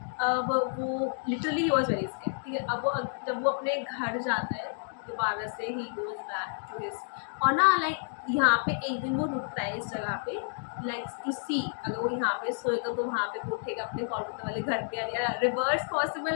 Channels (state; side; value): silent; right; digital silence